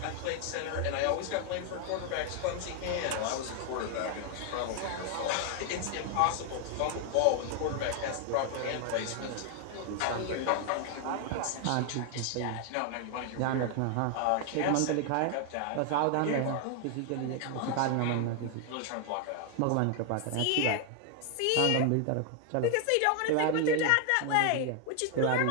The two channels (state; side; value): different; both; correlation 0.00